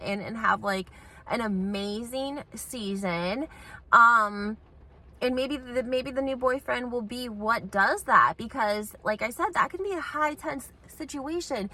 and have like an amazing season. And maybe the new boyfriend will be what does that, because like I said, that can be a high tense situation.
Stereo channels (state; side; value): identical; both; correlation 1.00